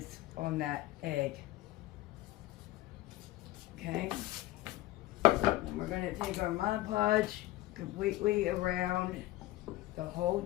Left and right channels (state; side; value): quieter; right; 17.1 dB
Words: on that egg. Okay. And we're going to take our Mod Podge completely around the whole